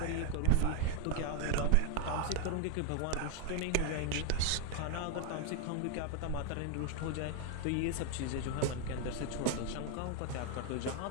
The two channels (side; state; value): both; different; correlation 0.01